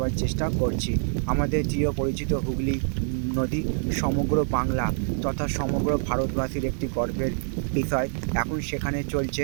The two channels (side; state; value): left; silent; digital silence